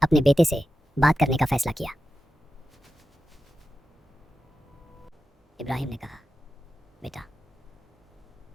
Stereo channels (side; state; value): both; normal; correlation 0.91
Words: अपने बेटे से बात करने का फैसला किया। इब्राहीम ने कहा, बेटा,